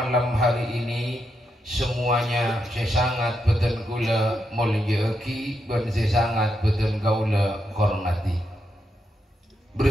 hari ini, semuanya saya sangat beten kula mulyaki dan saya sangat beten kaula hormati.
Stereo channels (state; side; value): normal; both; correlation 0.83